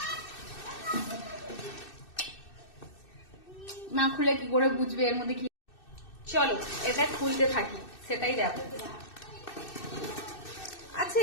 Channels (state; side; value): late; right; 2.6 ms